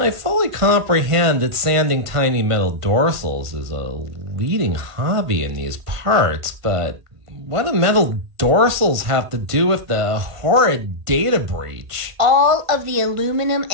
I fully comprehend that sanding tiny metal dorsals is a leading hobby in these parts, but what do metal dorsals have to do with the horrid data breach? All of the aluminum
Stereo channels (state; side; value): late; left; 1.5 ms